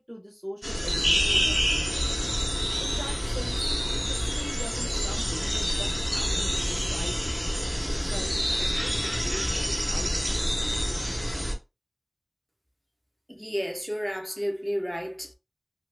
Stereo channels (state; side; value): identical; both; correlation 1.00